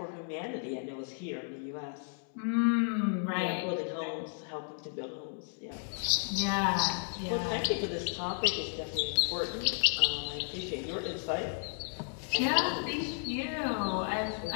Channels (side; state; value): right; silent; 56 dB below the other